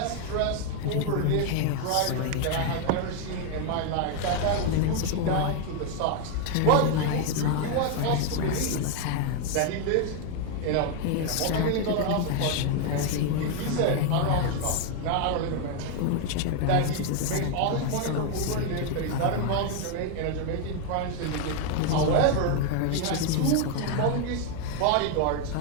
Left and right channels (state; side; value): different; both; correlation 0.01